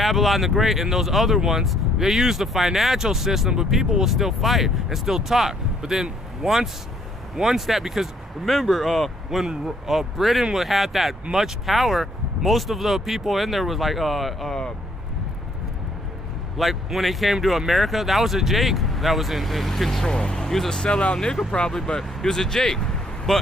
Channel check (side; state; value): both; normal; correlation 0.66